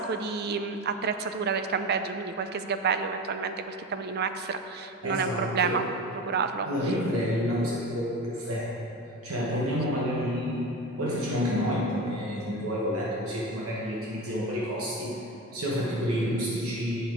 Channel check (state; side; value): normal; both; correlation 0.28